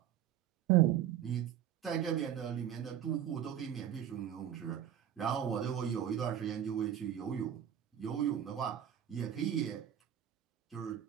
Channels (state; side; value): quieter; left; 10.1 dB